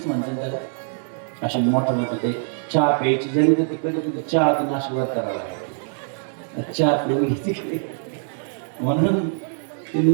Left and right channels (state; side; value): silent; left; digital silence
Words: म्हणतात त्याला. असे मोठे मोठे ते चहा प्यायची जरी तर तिकडे तिथे चहा नाशिकवर करावा लागतो. चहा पिऊन तिकडे म्हणून ती